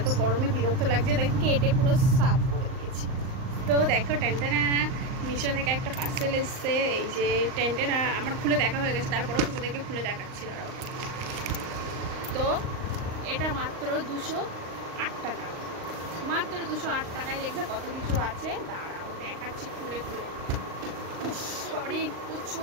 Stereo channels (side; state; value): left; late; 38 ms